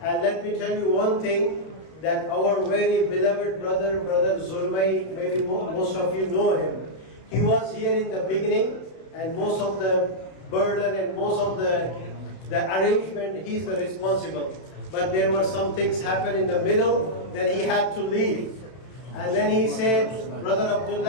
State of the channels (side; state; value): right; late; 32 ms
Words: And let me tell you one thing, that our very beloved brother Zulmay, maybe most of you know him. He was here in the beginning, and most of the burden and most of the arrangement, he's the responsible. But there were some things happen in the middle, then he had to leave. And then he said, brother